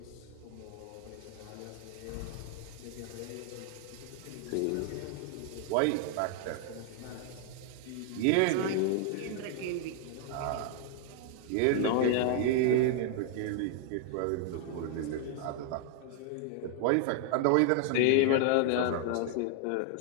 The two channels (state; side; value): different; both; correlation 0.00